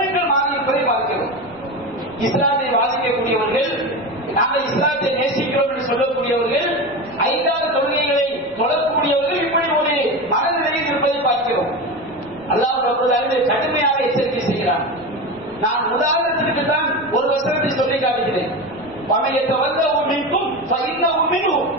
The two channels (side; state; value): left; noise; rumble, 27 dB below the sound